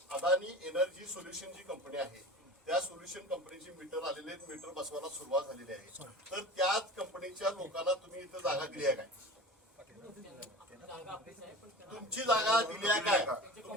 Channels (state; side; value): normal; both; correlation 0.37